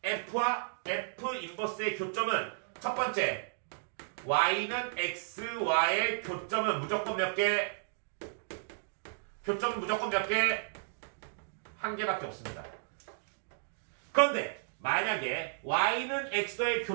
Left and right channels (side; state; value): left; silent; digital silence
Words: f와 f 인버스의 교점은 첫 번째 y는 x와의 교점은 무조건 몇 개? 교점은 무조건 몇 개? 한 개밖에 없습니다. 그런데 만약에 y는 x와의